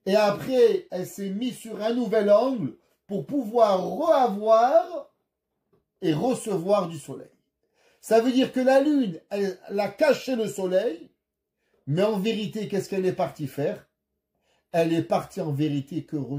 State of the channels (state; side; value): identical; both; correlation 1.00